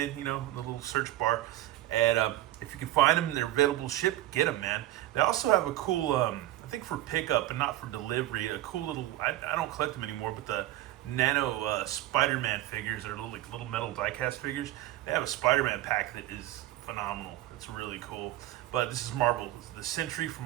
in the little search bar, and if you can find them, they're available to ship. Get them, man. They also have a cool, I think for pickup and not for delivery, a cool little. I don't collect them anymore, but the Nano Spider-Man figures are little metal diecast figures. They have a Spider-Man pack that is phenomenal. It's really cool. But this is Marvel, the Sentry from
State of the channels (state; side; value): quieter; left; 15.0 dB